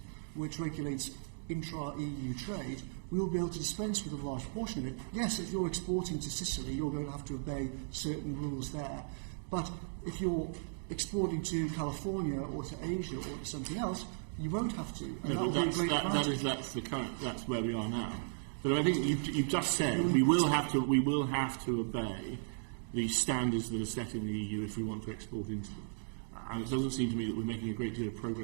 which regulates intra-EU trade, we will be able to dispense with a large portion of it. Yes, if you're exporting to Sicily, you're going to have to obey certain rules there. But if you're exporting to California or to Asia or to something else, you won't have to. And no, that's where we are now. But I think you've just said we will have to obey the standards that are set in the EU if we want to export into them. And it doesn't seem to me that we're making a great deal of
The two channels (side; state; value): left; silent; digital silence